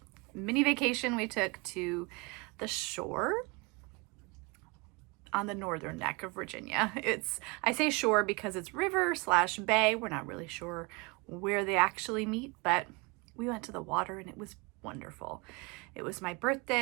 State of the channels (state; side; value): quieter; left; 27.9 dB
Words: mini vacation we took to the shore on the northern neck of Virginia. I say shore because it's river/bay. We're not really sure where they actually meet, but we went to the water and it was wonderful. It was my